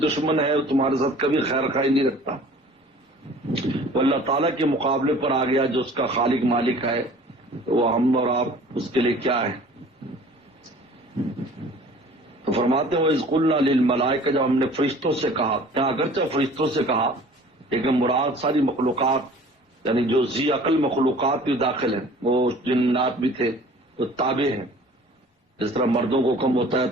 ہے، وہ تمہارے ساتھ کبھی خیر خواہی نہیں رکھتا، وہ اللہ تعالیٰ کے مقابلے پر آ گیا جو اس کا خالق مالک ہے، تو وہ ہم اور آپ اس کے لیے کیا ہے؟ تو فرماتے ہیں وَإِذْ قُلْنَا لِلْمَلَائِكَةِ، جب ہم نے فرشتوں سے کہا، کیا اگرچہ فرشتوں سے کہا لیکن مراد ساری مخلوقات یعنی جو ذی عقل مخلوقات بھی داخل ہیں، وہ جنات بھی تھے، وہ تابع ہیں۔ جس طرح مردوں کو حکم ہوتا ہے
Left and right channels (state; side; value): normal; both; correlation 0.48